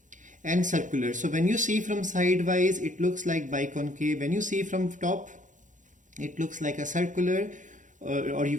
and circular. So when you see from sidewise, it looks like biconcave. When you see from top, it looks like a circular or you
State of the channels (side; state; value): left; late; 0.37 ms